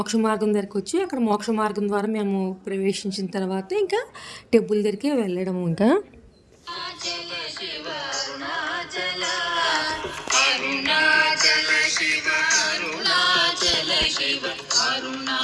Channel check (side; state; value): both; identical; correlation 1.00